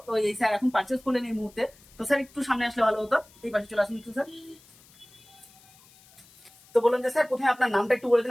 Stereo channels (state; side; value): noise; left; hiss, 27 dB below the sound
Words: তো এই স্যার এখন পারচেজ করলেন এই মুহূর্তে। তো স্যার একটু সামনে আসলে ভালো হতো, এই পাশে চলে আসুন একটু স্যার। তো বলুন যে স্যার প্রথমে আপনার নামটা একটু বলে দিন